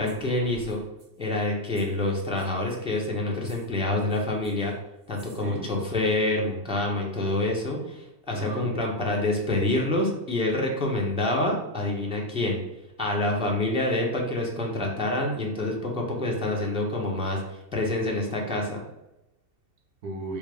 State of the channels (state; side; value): late; left; 2.7 ms